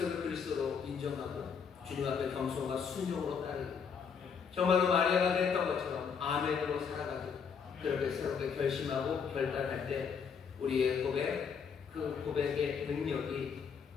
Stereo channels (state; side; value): quieter; right; 6.5 dB